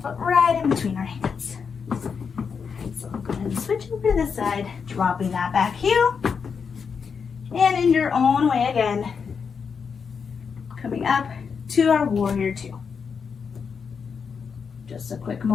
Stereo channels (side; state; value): right; quieter; 6.1 dB